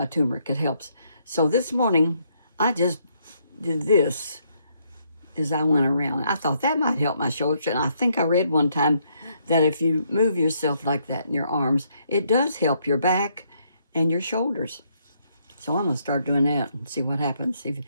turmeric. It helps. So this morning, I just did this as I went around. I thought that might help my shoulders. And I think I read one time that if you move yourself like that in your arms, it does help your back and your shoulders. So I'm going to start doing that and see what happens.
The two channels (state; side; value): inverted; both; correlation -0.72